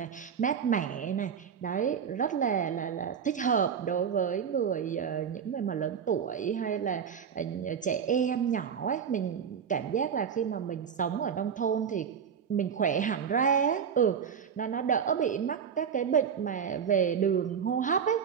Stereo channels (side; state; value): left; quieter; 7.3 dB